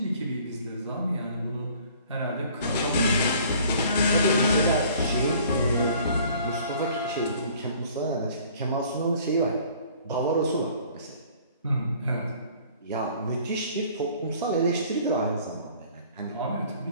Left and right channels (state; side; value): inverted; both; correlation -0.54